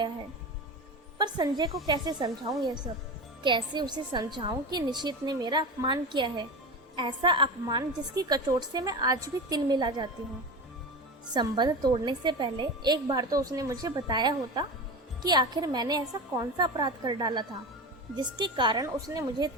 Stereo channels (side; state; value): both; normal; correlation 0.25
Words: है। पर संजय को कैसे समझाऊं यह सब? कैसे उसे समझाऊं कि निशित ने मेरा अपमान किया है, ऐसा अपमान जिसकी कचोट से मैं आज भी तिल मिला जाती हूँ। संबंध तोड़ने से पहले एक बार तो उसने मुझे बताया होता कि आखिर मैंने ऐसा कौन सा अपराध कर डाला था जिसके कारण उसने मुझे